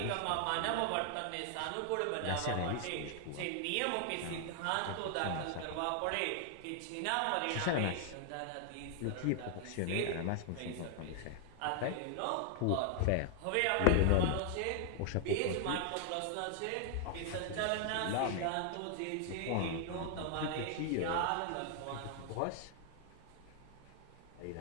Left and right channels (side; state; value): both; different; correlation 0.00